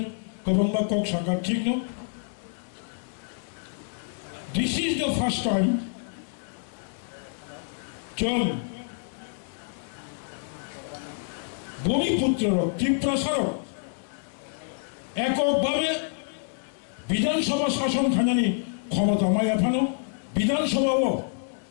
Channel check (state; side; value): silent; right; digital silence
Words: গভর্নবা কক সাকার ঠিক ন this is the first time চল ভূমিপুত্র ত্রিপুরা সরক এককভাবে বিধানসভা শাসন খাজানি ক্ষমতা মায়া ফানো বিধানসভাও